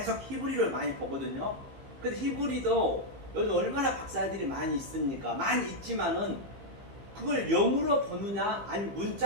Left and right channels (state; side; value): late; left; 15 ms